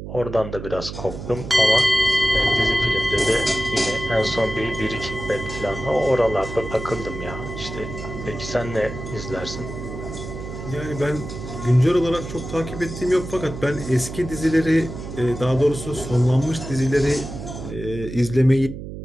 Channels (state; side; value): noise; right; hum, 9 dB below the sound